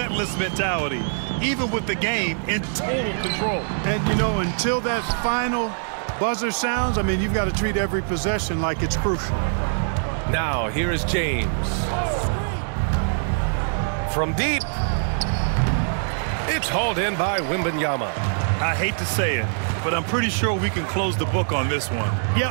mentality, even with the game in total control. And, you know, until that final buzzer sounds, I mean, you've got to treat every possession like it's crucial. Now, here is James. From deep. It's hauled in by Wembanyama. I hate to say it, but I'm pretty sure we can close the book on this one.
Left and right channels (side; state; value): left; silent; digital silence